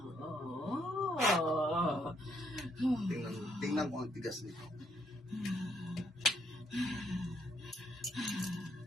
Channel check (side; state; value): both; normal; correlation 0.72